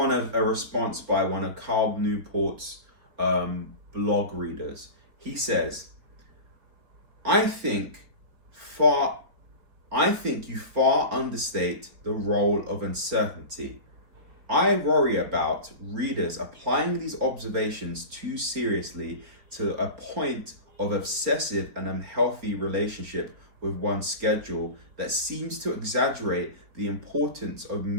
response by one of Carl Newport's blog readers. He says, I think far I think you far understate the role of uncertainty. I worry about readers applying these observations too seriously to a point of obsessive and unhealthy relationship with one's schedule that seems to exaggerate the importance of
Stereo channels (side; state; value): left; late; 4.4 ms